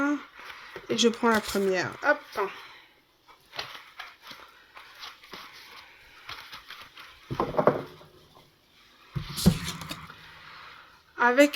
Et je prends la première. Hop.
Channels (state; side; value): identical; both; correlation 1.00